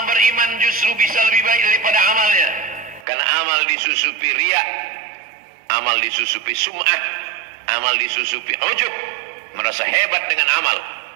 beriman justru bisa lebih baik daripada amalnya? Karena amal disusupi riya, amal disusupi sum'ah, amal disusupi ujub, merasa hebat dengan amal.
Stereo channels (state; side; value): drops out; left; at 3.1 s